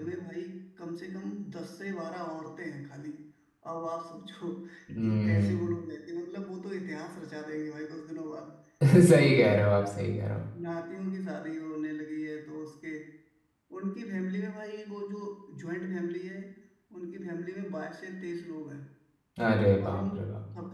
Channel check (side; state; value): both; identical; correlation 1.00